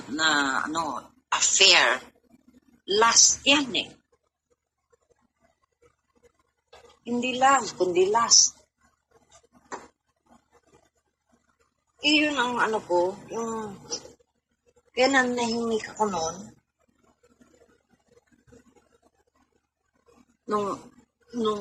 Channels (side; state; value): both; identical; correlation 1.00